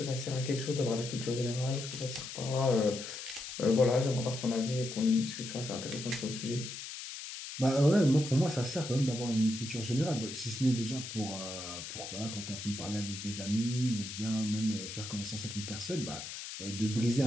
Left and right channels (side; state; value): left; noise; hiss, 9 dB below the sound